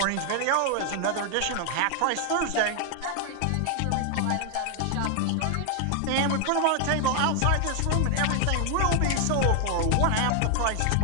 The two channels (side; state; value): both; different; correlation 0.00